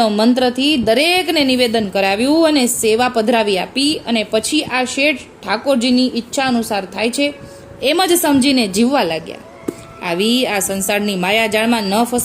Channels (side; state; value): both; identical; correlation 1.00